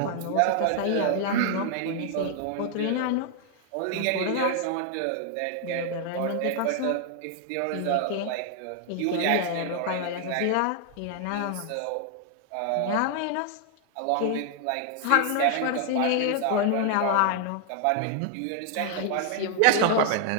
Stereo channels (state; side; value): different; both; correlation 0.00